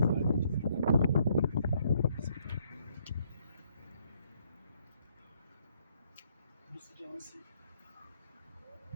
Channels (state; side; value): inverted; both; correlation -0.69